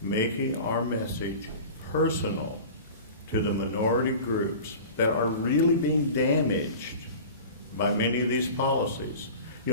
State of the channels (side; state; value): both; inverted; correlation -0.37